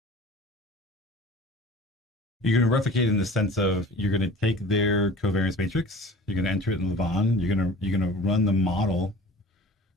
You're going to replicate in the sense of you're going to take their covariance matrix, you're going to enter it in Levon, you're going to run the model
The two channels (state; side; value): normal; both; correlation 0.43